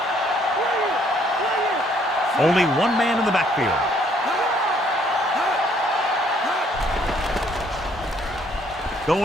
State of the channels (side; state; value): both; normal; correlation 0.65